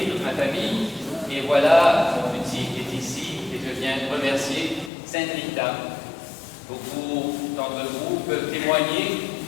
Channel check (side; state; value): right; drops out; at 4.9 s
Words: toute ma famille, et voilà, mon petit est ici, et je viens remercier Saint Rita. Beaucoup d'entre vous peuvent témoigner